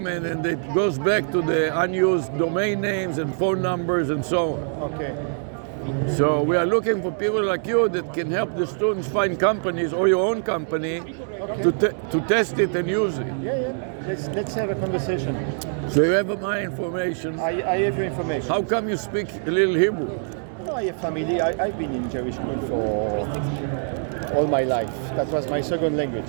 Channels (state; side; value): silent; left; 63 dB below the other